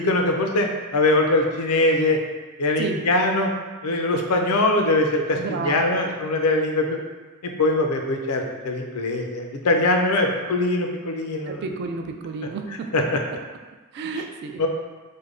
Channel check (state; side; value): normal; both; correlation -0.04